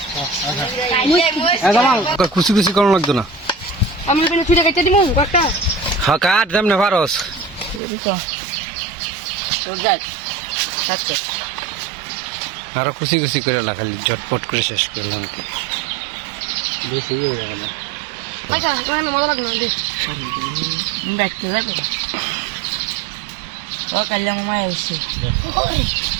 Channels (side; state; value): left; drops out; at 7.8 s